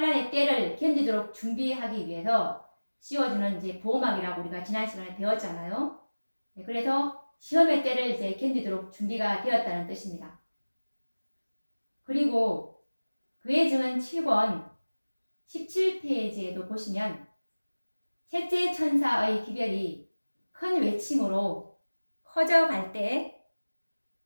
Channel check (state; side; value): inverted; both; correlation -1.00